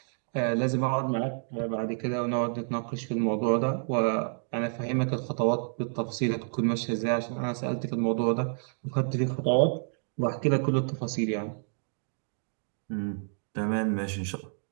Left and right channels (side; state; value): left; silent; digital silence